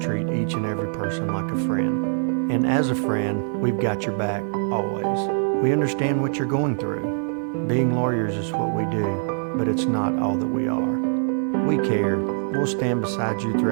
each and every person like a friend. And as a friend, we've got your back always. We understand what you're going through. Being lawyers is what we do, but it's not all that we are. We care. We'll stand beside you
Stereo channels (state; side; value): silent; left; 63 dB below the other